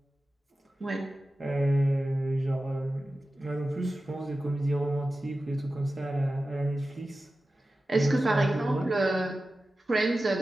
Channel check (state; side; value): normal; both; correlation 0.94